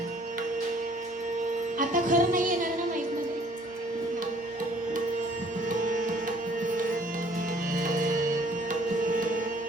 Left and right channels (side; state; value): both; normal; correlation 0.57